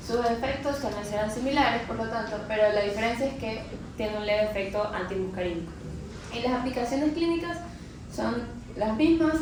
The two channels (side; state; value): both; identical; correlation 1.00